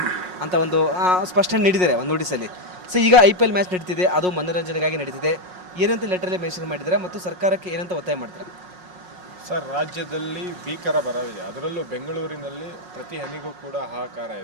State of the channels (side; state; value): left; late; 5.5 ms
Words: ಅಂತ ಒಂದು ಸ್ಪಷ್ಟನೆ ನೀಡಿದ್ದಾರೆ ಒಂದು ನೋಟಿಸಲ್ಲಿ. ಸೊ ಈಗ IPL ಮ್ಯಾಚ್ ನಡೀತಿದೆ, ಅದು ಮನೋರಂಜನೆಗಾಗಿ ನಡೀತಿದೆ. ಏನಂತ ಲೆಟ್ರಲ್ಲಿ ಮೆನ್ಷನ್ ಮಾಡಿದ್ದಾರೆ ಮತ್ತು ಸರ್ಕಾರಕ್ಕೆ ಏನಂತ ಒತ್ತಾಯ ಮಾಡ್ತಾರೆ? ಸರ್, ರಾಜ್ಯದಲ್ಲಿ ಭೀಕರ ಬರವಿದೆ. ಅದರಲ್ಲೂ ಬೆಂಗಳೂರಿನಲ್ಲಿ ಪ್ರತಿ ಹನಿಗೂ ಕೂಡ ಹಾಹಾಕಾರ